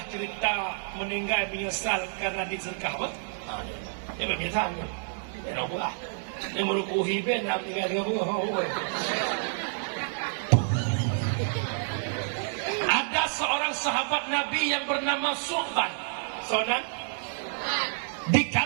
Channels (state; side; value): silent; left; digital silence